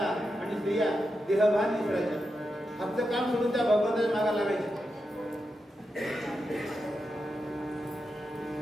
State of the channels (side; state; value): both; normal; correlation 0.88